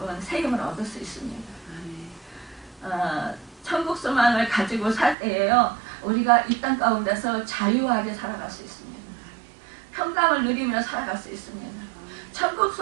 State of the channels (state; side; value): drops out; left; at 5.2 s